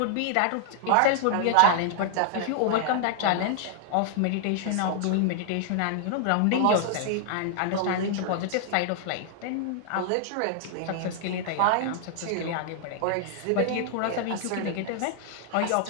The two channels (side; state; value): both; different; correlation 0.00